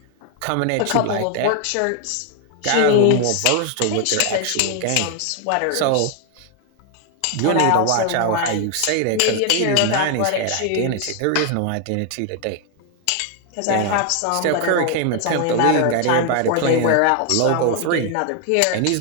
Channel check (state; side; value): different; both; correlation 0.01